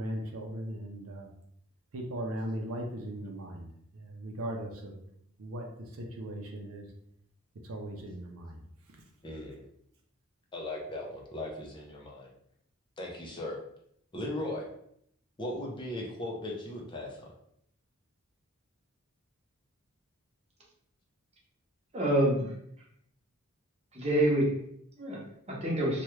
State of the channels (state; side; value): normal; both; correlation 0.47